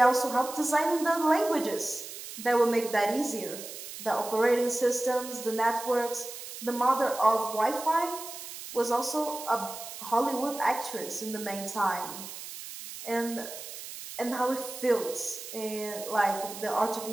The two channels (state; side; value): noise; right; hiss, 11 dB below the sound